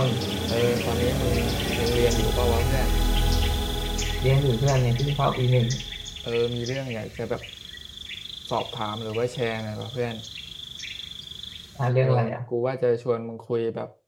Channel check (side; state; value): both; identical; correlation 1.00